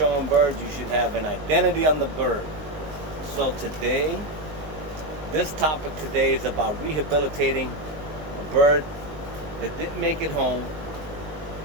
birds, you should have an identity on the bird. So today, this topic today is about rehabilitating a bird that didn't make it home,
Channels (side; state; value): left; late; 19 ms